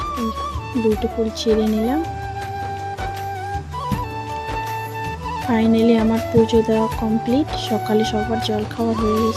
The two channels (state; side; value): identical; both; correlation 1.00